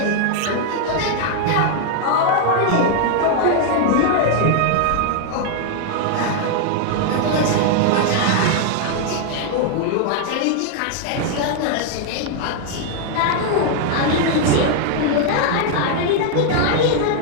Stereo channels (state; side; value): different; both; correlation 0.00